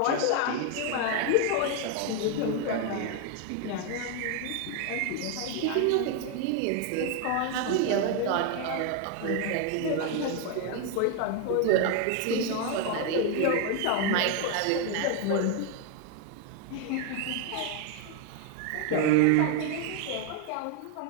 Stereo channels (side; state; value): both; different; correlation 0.01